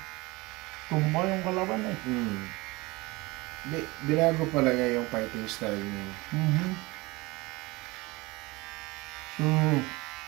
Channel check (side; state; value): left; quieter; 22.9 dB